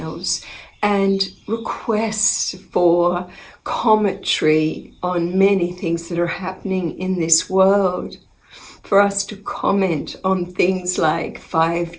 and requests for commentary on many things that are happening in this world. For us to comment on things like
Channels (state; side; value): identical; both; correlation 1.00